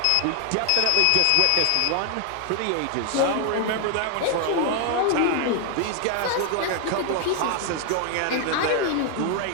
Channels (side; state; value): both; different; correlation 0.00